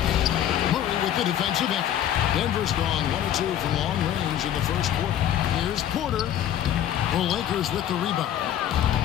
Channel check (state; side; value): quieter; right; 10.8 dB